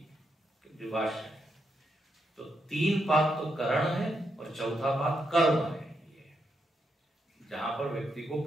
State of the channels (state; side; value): normal; both; correlation 0.81